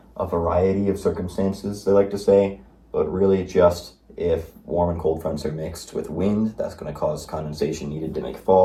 a variety of circumstances, they like to say, but really just if warm and cold fronts are mixed with wind, that's going to cause condensation needed to make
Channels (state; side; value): identical; both; correlation 1.00